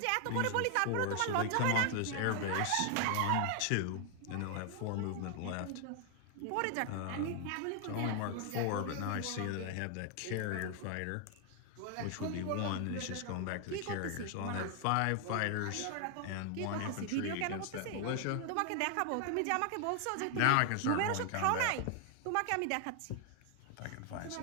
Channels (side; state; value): both; different; correlation 0.00